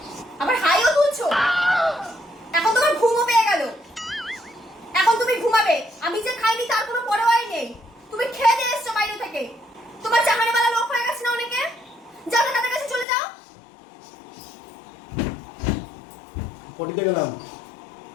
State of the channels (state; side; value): drops out; right; at 13.1 s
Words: আবার হাইও তুলছো। এখন তোমার ঘুমও পেয়ে গেল। এখন তুমি ঘুমাবে। আমি যে খাইনি তার কোনো পরোয়াই নেই। তুমি খেয়ে দিয়ে এসছো বাইরে থেকে। তোমার চাকরিওয়ালা লোক হয়ে গেছে না অনেকে। যাও না, তাদের কাছে চলে যাও। পটিতে গেলাম।